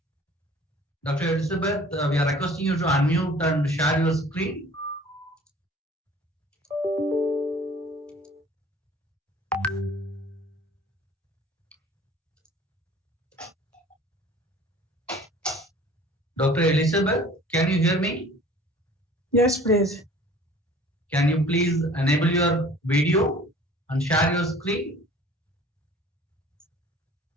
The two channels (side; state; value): both; normal; correlation 0.49